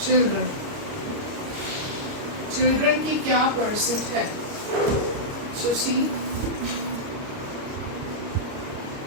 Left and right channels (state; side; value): late; left; 29 ms